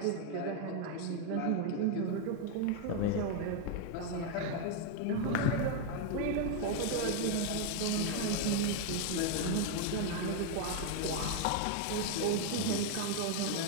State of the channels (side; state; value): both; different; correlation 0.01